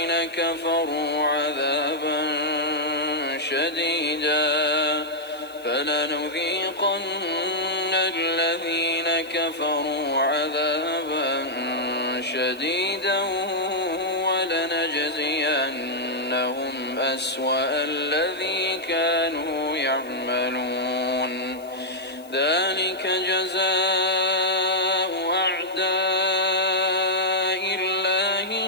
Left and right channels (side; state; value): left; noise; hiss, 24 dB below the sound